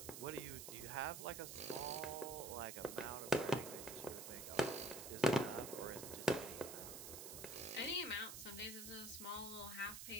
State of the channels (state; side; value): noise; right; hiss, 8 dB below the sound